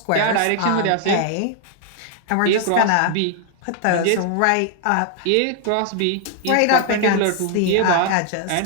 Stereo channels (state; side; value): different; both; correlation 0.00